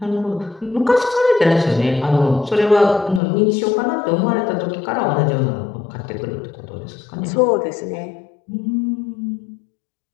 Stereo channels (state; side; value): drops out; right; at 3.2 s